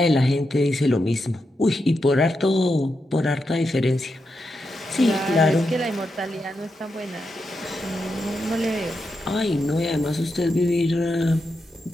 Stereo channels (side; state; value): both; normal; correlation 0.86